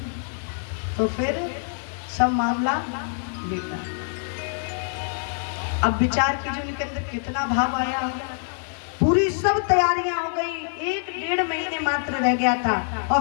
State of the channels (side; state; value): right; silent; digital silence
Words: तो फिर सब मामला बेकार। अब विचार कीजिए उनके अंदर कितना भाव आया होगा। पूरी सब तैयारियां हो गई, 1-1.5 महीने मात्र रह गया था और